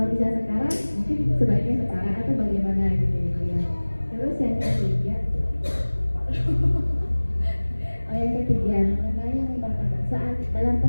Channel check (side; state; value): both; inverted; correlation -1.00